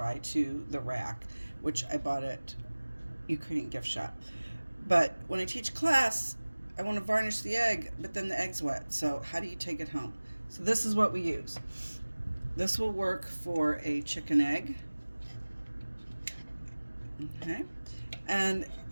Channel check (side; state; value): both; inverted; correlation -1.00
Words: to the rack, which I bought at Ukrainian gift shop. But when I teach class, I want to varnish the egg, but then the egg's wet. So how do you take it home? So this is what we use. This will work for a chicken egg. Okay. And